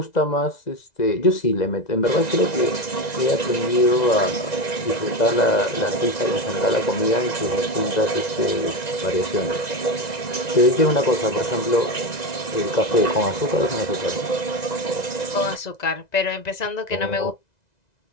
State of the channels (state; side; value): late; right; 1.9 ms